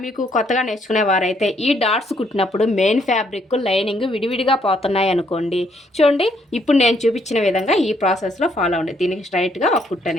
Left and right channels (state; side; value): normal; both; correlation 0.70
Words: మీకు కొత్తగా నేర్చుకునే వారైతే ఈ డాట్స్ కుట్టినప్పుడు మెయిన్ ఫ్యాబ్రిక్ లైనింగ్ విడివిడిగా పోతున్నాయి అనుకోండి, చూడండి ఇప్పుడు నేను చూపించిన విధంగా ఈ ప్రాసెస్లో ఫాలో అవ్వండి. దీనికి స్ట్రైట్గా ఒక కుట్టు